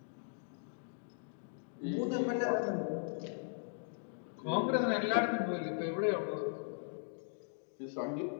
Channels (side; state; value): right; silent; digital silence